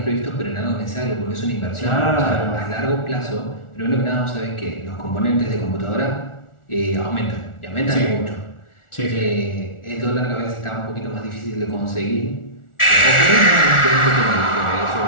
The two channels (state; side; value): late; right; 1.4 ms